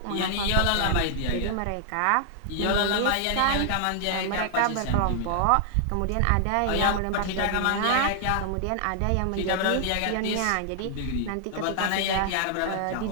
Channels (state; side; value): different; both; correlation -0.01